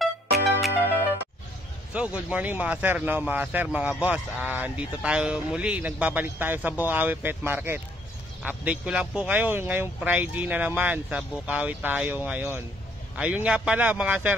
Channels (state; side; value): normal; both; correlation 0.66